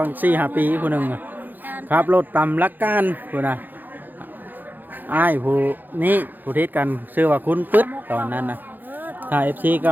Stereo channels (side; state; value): left; late; 0.087 ms